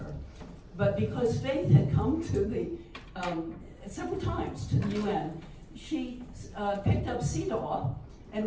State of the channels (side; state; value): both; identical; correlation 1.00